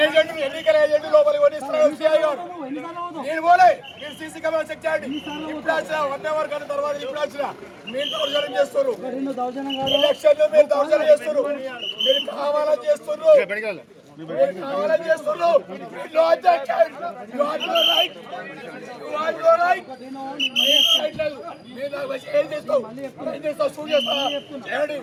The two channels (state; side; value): identical; both; correlation 1.00